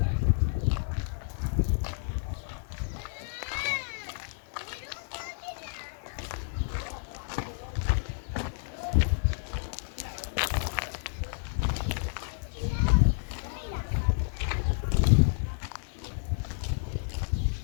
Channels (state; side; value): silent; right; digital silence